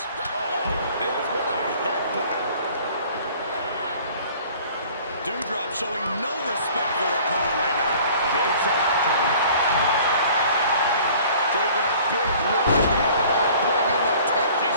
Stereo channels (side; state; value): both; inverted; correlation -0.50